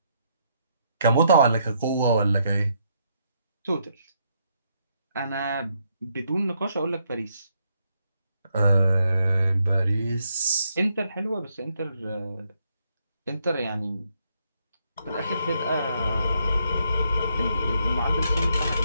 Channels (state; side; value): inverted; both; correlation -0.75